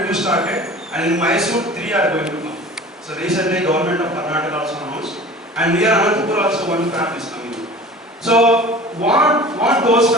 2 started, and in Mysore 3 are going to come. So recently government of Karnataka also announced, and near Anantapur also 1 fab is coming. So what those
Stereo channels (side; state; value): both; normal; correlation 0.41